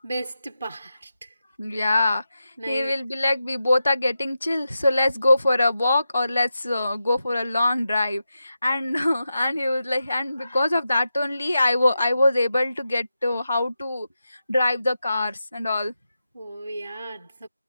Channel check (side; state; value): both; inverted; correlation -0.89